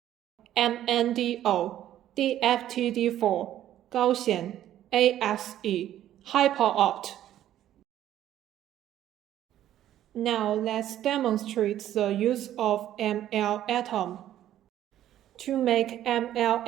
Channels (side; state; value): left; quieter; 12.2 dB